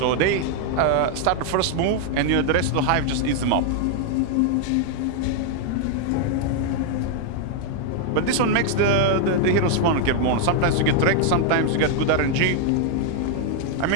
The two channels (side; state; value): both; different; correlation 0.00